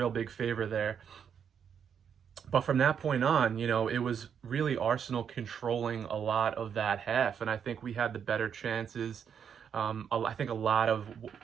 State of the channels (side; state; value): left; quieter; 7.7 dB